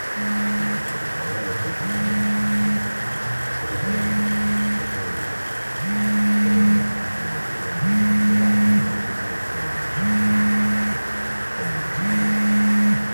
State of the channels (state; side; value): inverted; both; correlation -1.00